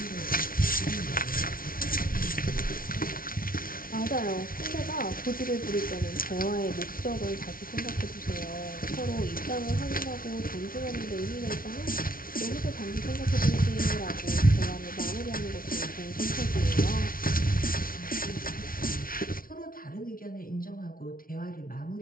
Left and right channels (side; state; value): right; late; 0.42 ms